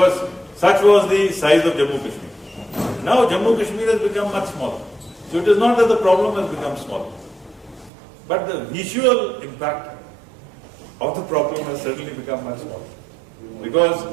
such was the size of Jammu Kashmir. Now Jammu Kashmir has become much smaller. So it is not that the problem has become smaller, but the visual impact of the problem has certainly become much smaller. Because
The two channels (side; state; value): left; drops out; at 7.9 s